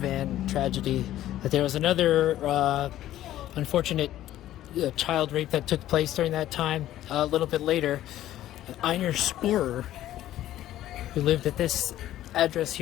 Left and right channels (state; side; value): quieter; right; 13.4 dB